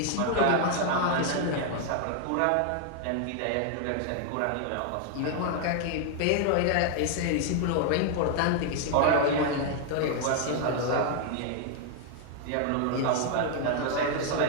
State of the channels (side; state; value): both; different; correlation 0.00